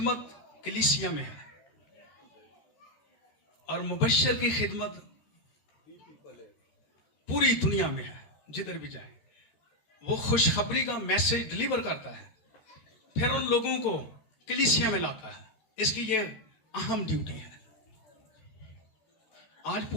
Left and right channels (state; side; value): late; right; 13 ms